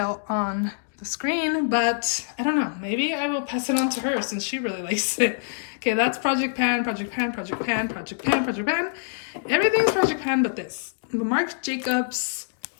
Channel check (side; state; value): right; silent; digital silence